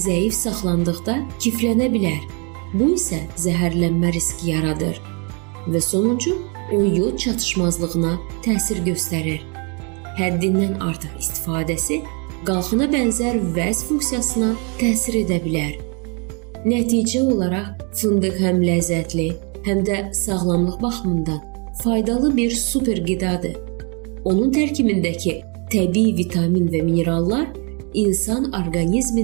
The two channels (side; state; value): left; quieter; 34.4 dB